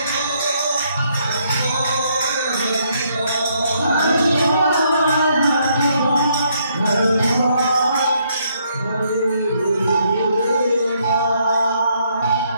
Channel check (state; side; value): inverted; both; correlation -0.72